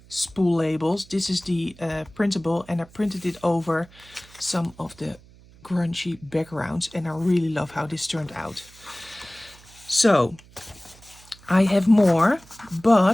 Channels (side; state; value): right; noise; hum, 24 dB below the sound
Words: spool labels. This is the printable, and I printed it over some of the grungy backgrounds, and I really love how this turned out. So I have more,